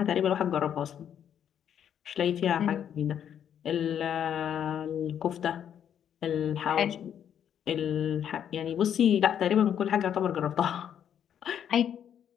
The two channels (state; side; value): quieter; right; 9.2 dB